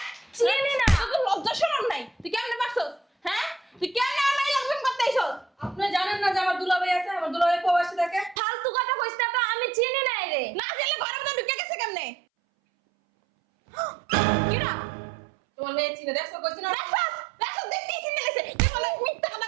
চিনি না। তোর লজ্জা শরম নাই? তুই কেমনে পারছস? হ্যাঁ? তুই কেমনে আমার মাইয়ের লগে করতে আইছস? আপনি জানেন না যে আমার দুলাভাই আছে? আমার দুলাভাই প্রবাসী থাকে। ফালতু কথা কইছ না তো, আমি চিনি নাই রে। না জেলে ঘরের মধ্যে ঢুকে গেছে কেমনে? কিরা? তোমার মেয়ে চিনে দেখছো, কইছি না? দেখছস দেখতেই চিনে গেছে। তুই বলে মিথ্যা কথা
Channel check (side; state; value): left; drops out; at 8.3 s